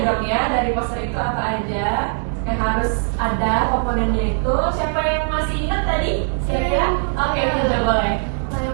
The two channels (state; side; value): silent; left; 59 dB below the other